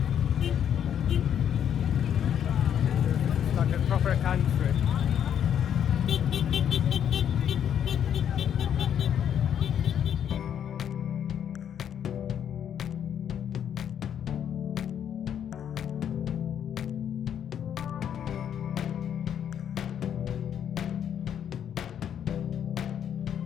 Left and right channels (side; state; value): right; quieter; 9.1 dB